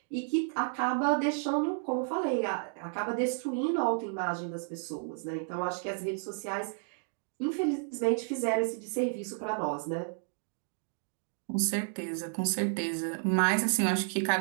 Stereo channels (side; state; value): left; silent; 56 dB below the other